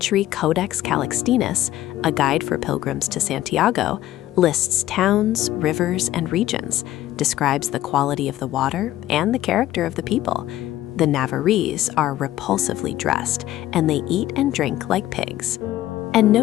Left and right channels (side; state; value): right; quieter; 14.2 dB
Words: Codex Calixtinus, a guide for pilgrims to Santiago, lists towns, rivers, and regions, describes the quality of the water and the character of the people. The Navarrese are repulsively dressed, and they eat and drink like pigs, and